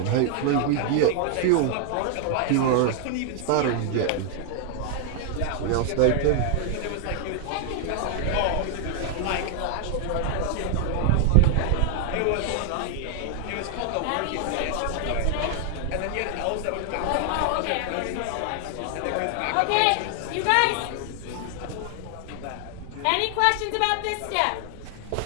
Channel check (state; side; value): different; both; correlation 0.00